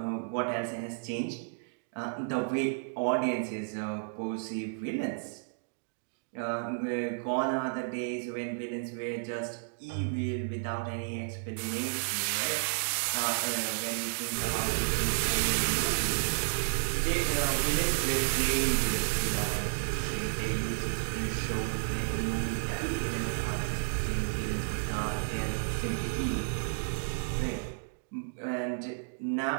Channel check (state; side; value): silent; left; digital silence